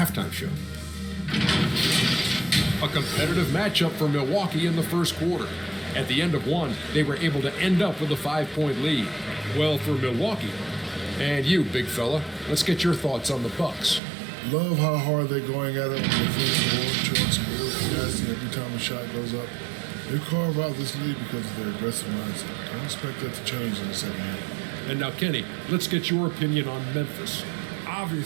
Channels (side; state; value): left; drops out; at 14.0 s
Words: Show. A competitive matchup for Milwaukee in the first quarter. At the end of one, they were able to end up with a 5-point lead. Well, for Milwaukee. And you, big fella, let's get your thoughts on the Bucks. Love how hard they're going at it on the first board, showing some real tenacity every time a shot goes up. They carve out this lead because of their aggressive mindset. Don't expect that to change in the second half. And now, Kenny, let's get your opinion on Memphis.